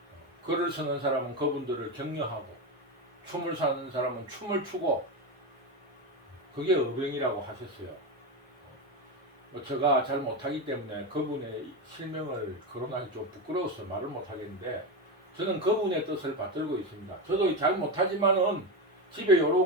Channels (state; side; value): normal; both; correlation 0.15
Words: 글을 쓰는 사람은 그분들을 격려하고, 춤을 사는 사람은 춤을 추고, 그게 의병이라고 하셨어요. 제가 잘 못하기 때문에 그분의 실명을 거론하기 좀 부끄러워서 말을 못하겠는데, 저는 그분의 뜻을 받들고 있습니다. 저도 잘 못하지만은 집에